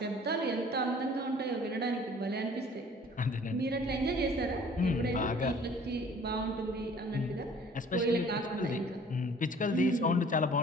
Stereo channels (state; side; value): normal; both; correlation 0.52